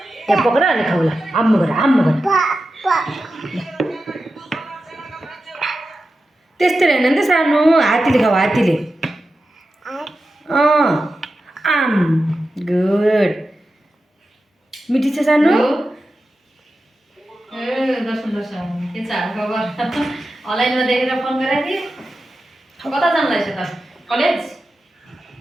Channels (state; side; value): normal; both; correlation 0.92